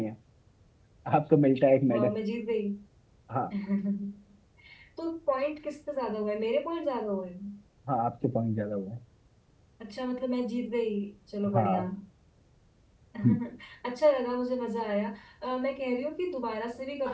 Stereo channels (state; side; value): identical; both; correlation 1.00